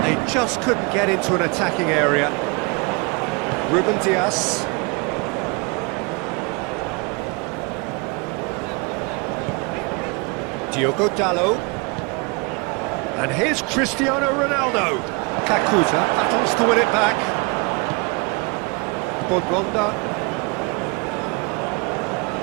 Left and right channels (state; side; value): quieter; left; 30.0 dB